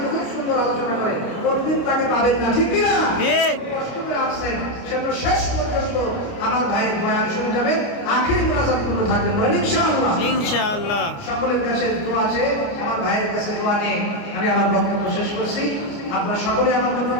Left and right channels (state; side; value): late; right; 29 ms